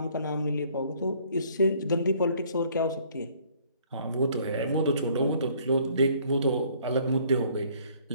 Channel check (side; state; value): both; inverted; correlation -0.60